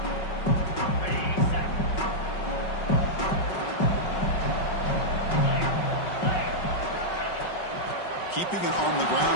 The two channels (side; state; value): right; late; 5.4 ms